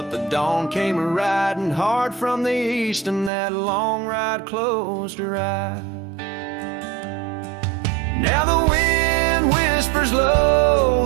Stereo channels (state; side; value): drops out; left; at 3.3 s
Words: the dawn came riding hard from the east, and that long ride closed her eyes. Now the wind whispers